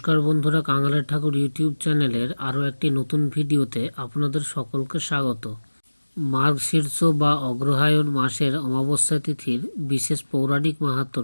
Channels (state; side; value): inverted; both; correlation -1.00